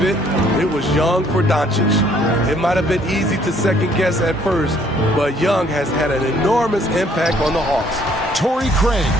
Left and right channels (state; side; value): normal; both; correlation 0.63